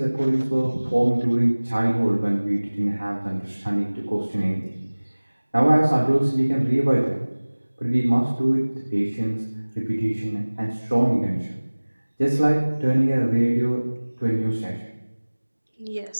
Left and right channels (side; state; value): both; inverted; correlation -1.00